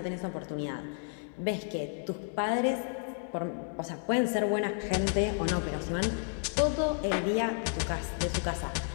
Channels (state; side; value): silent; right; 56 dB below the other